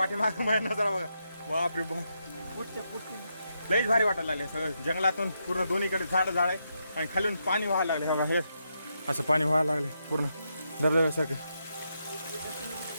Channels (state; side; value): inverted; both; correlation -0.82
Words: माझ्या नजारा बघा. बापरे बाप लईच भारी वाटायला लागले. सगळं जंगलातून पूर्ण दोन्हीकडे झाड आहे. आणि खालून पाणी व्हायला लागले बघा, असं पाणी व्हायला लागले पूर्ण धबधब्यासारखं.